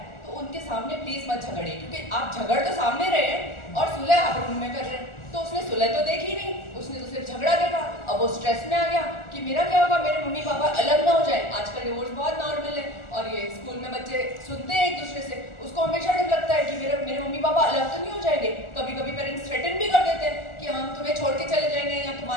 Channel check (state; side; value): late; right; 1.4 ms